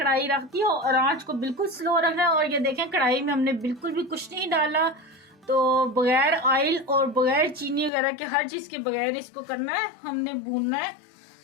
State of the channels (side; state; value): right; drops out; at 7.9 s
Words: रख दी और आंच को बिल्कुल स्लो रखना है। और ये देखें कढ़ाई में हमने बिल्कुल भी कुछ नहीं डाला। तो बगैर ऑयल और बगैर चीनी वगैरह के, हर चीज़ के बगैर इसको करना है, हमने भूनना है।